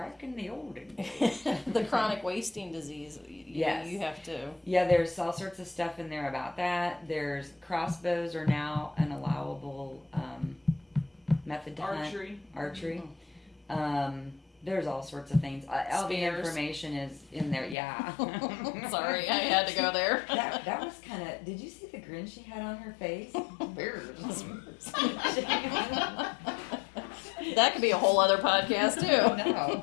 in the olden days. the chronic wasting disease. Yes. You have to. Yeah, there's all sorts of stuff in there about that. There's crossbows are now an allowable method to hunt. Archery. There's all sorts of things. All the Spears. information is in there. Yeah. Sorry, I had to go there. That was kind of. Did you see the grin she had on her face? That could be a whole other podcast too. No.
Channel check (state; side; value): drops out; right; at 17.8 s